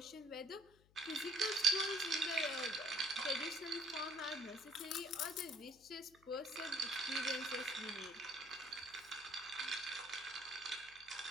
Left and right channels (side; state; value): left; noise; hum, 28 dB below the sound